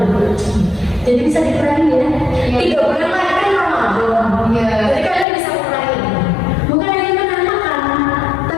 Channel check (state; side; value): drops out; right; at 5.2 s